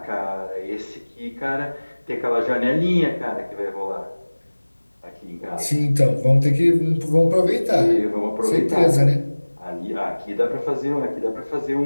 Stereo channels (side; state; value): both; inverted; correlation -1.00